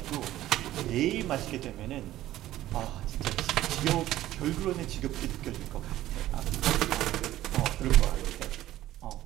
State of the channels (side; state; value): left; quieter; 14.4 dB